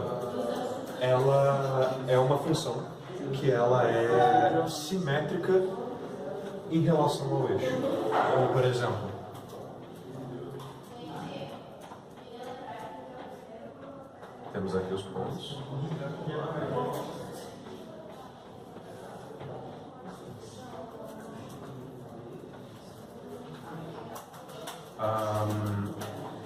ela é uma função que ela é simétrica em relação ao eixo. Ou, por exemplo, temos aqui os pontos.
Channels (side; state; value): both; identical; correlation 1.00